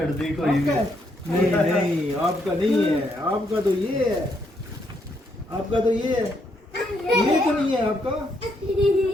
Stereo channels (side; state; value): both; normal; correlation 0.75